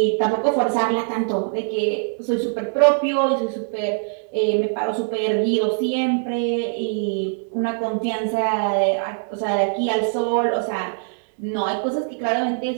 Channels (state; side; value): silent; left; digital silence